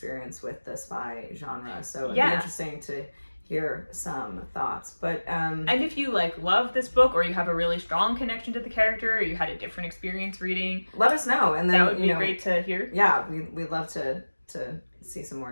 with the spy genre, so it'd be interesting to hear some thoughts. But and if you like love this book, or you have a really strong connection to the character, or you had a different experience reading, let us know, and then that would be great to hear. We'd love to see some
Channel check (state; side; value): inverted; both; correlation -1.00